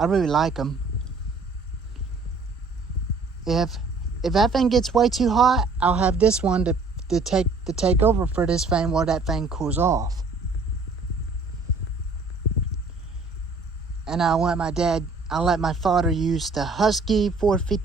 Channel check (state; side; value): quieter; left; 3.8 dB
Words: really like them. If that thing gets way too hot, I'll have this one to take over for this thing while that thing cools off. And I'll let my father use the Husky